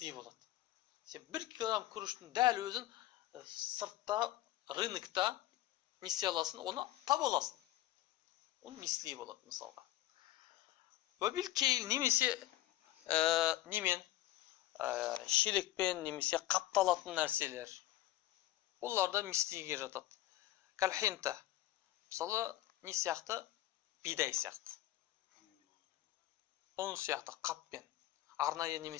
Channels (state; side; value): quieter; right; 15.2 dB